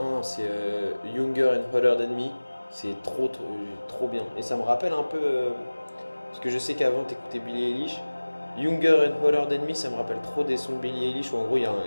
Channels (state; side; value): inverted; both; correlation -1.00